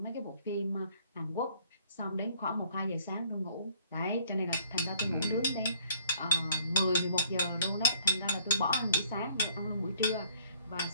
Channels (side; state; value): both; inverted; correlation -0.61